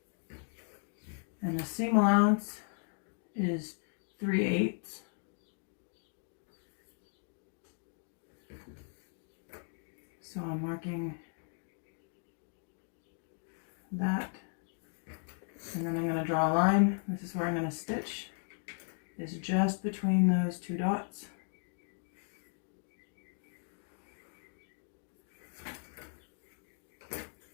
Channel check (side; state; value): right; silent; 53 dB below the other